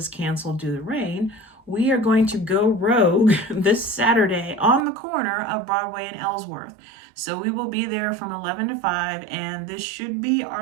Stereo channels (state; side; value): drops out; left; at 4.9 s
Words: canceled due to rain, we are going to go rogue this Saturday on the corner of Broadway and Ellsworth. So we will be there from 11 to 5, and this should be